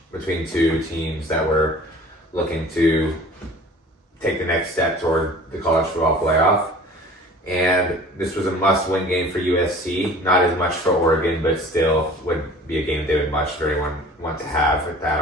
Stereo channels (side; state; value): both; normal; correlation 0.45